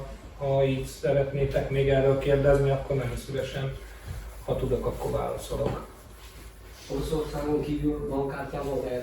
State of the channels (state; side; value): identical; both; correlation 1.00